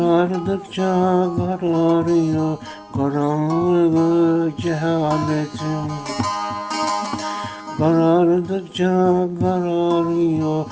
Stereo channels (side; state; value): both; identical; correlation 1.00